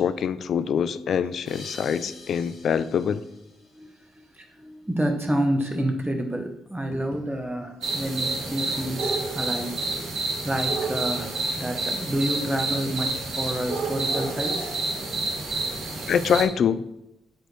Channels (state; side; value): normal; both; correlation 0.77